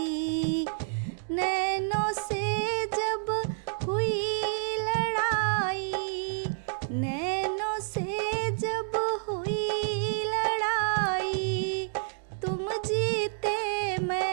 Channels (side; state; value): left; silent; digital silence